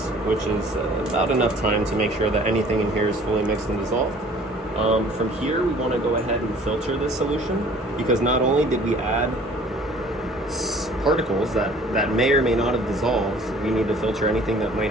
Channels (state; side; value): normal; both; correlation 0.52